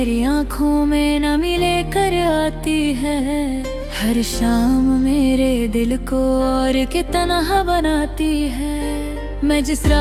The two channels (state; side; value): identical; both; correlation 1.00